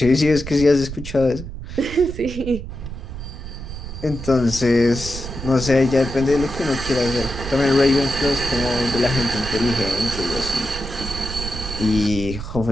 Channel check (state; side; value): noise; right; rumble, 9 dB below the sound